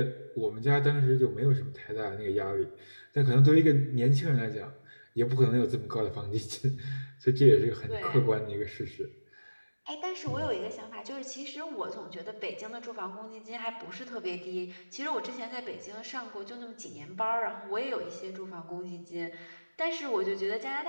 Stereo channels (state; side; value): inverted; both; correlation -1.00